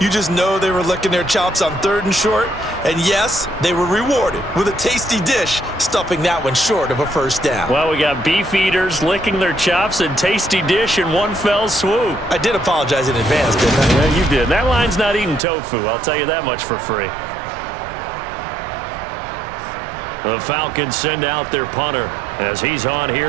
just know they were licking their chops on 3rd and short. And yes, they were rewarded with a tasty dish, stuffing that one short of a first down. Well, we got beefeaters licking their chops and tasty dish in one fell swoop. I did apologize in advance, didn't I? Yeah, you did. That line's not eating tofu, I'll tell you that much for free. The Falcons send out their punter as he's on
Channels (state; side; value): drops out; left; at 15.4 s